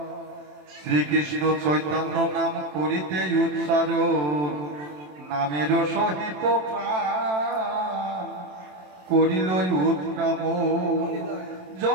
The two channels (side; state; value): left; late; 27 ms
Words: শ্রীকৃষ্ণ চৈতন্য নাম করিতে উচ্চারণ, নামের সহিত প্রাণ করিল উৎক্রম।